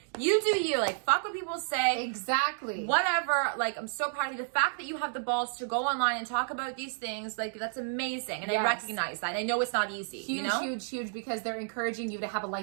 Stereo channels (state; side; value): silent; left; digital silence